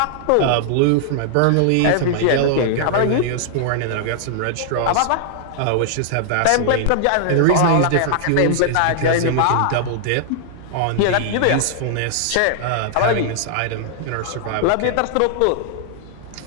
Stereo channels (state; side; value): different; both; correlation -0.01